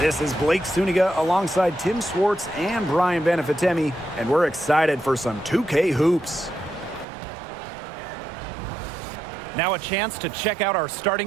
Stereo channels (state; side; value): drops out; left; at 7.1 s